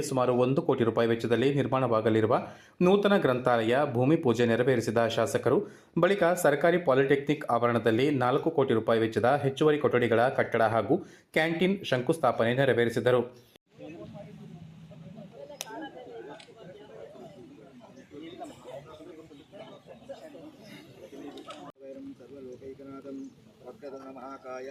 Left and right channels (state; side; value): identical; both; correlation 1.00